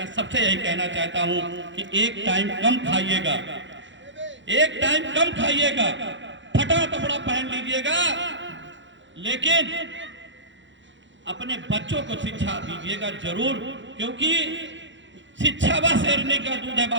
सबसे यही कहना चाहता हूँ कि एक टाइम कम खाइएगा, एक टाइम कम खाइएगा, फटा कपड़ा पहन लीजिएगा, लेकिन अपने बच्चों को शिक्षा दीजिएगा जरूर, क्योंकि शिक्षा वह शेरनी का दूध है।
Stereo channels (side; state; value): left; late; 0.54 ms